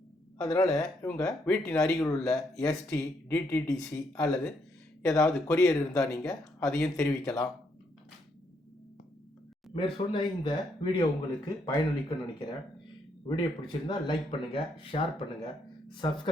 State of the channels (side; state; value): both; normal; correlation 0.74